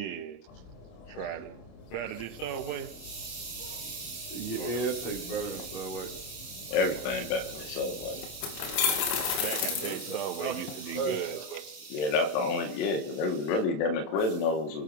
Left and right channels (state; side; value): late; right; 27 ms